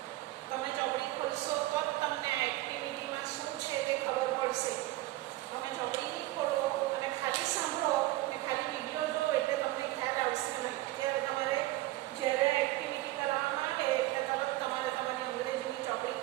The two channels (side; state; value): left; quieter; 17.6 dB